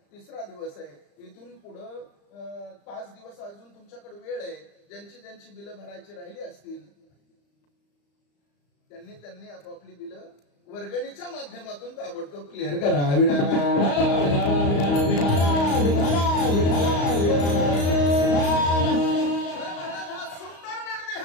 3रा दिवस आहे. इथून पुढं 5 दिवस अजून तुमच्याकडे वेळ आहे. ज्यांची बिलं भरायची राहिली असतील त्यांनी आपापली बिलं वर्गणीच्या माध्यमातून ताबडतोब क्लिअर करा. सुंदर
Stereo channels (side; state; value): right; late; 35 ms